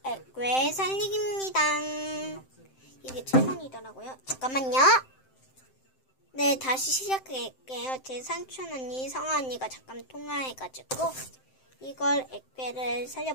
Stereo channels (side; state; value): right; late; 7.7 ms